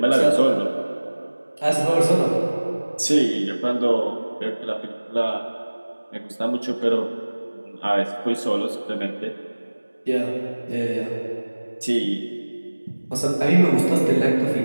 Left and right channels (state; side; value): inverted; both; correlation -1.00